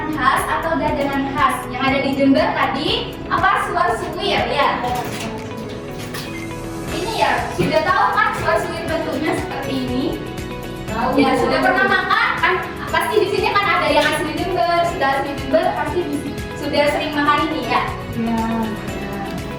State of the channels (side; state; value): both; identical; correlation 1.00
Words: khas atau jajanan khas yang ada di Jember tadi apa? Suar-suwir ya. Ini ya sudah tahu kan suar-suwir bentuknya seperti ini? Tahu. Ya sudah pernah makan kan? Pasti di sini kan ada yang asli Jember, sudah asli Jember pasti sudah sering makan ini ya.